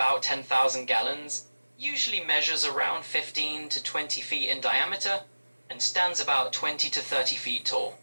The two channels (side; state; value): both; inverted; correlation -1.00